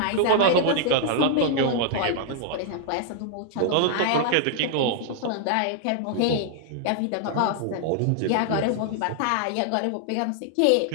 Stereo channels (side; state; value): both; different; correlation -0.01